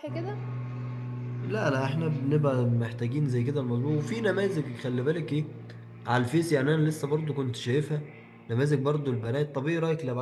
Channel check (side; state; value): both; identical; correlation 1.00